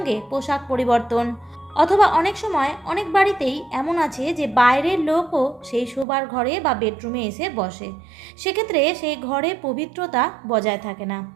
পোশাক পরিবর্তন, অথবা অনেক সময় অনেক বাড়িতেই এমন আছে যে বাইরের লোকও সেই শোবার ঘরে বা বেডরুমে এসে বসে। সেক্ষেত্রে সেই ঘরে পবিত্রতা বজায় থাকে না।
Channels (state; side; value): drops out; left; at 6.1 s